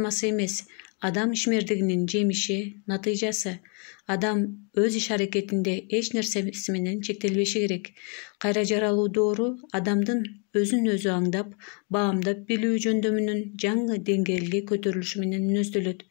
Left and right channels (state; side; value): quieter; right; 35.6 dB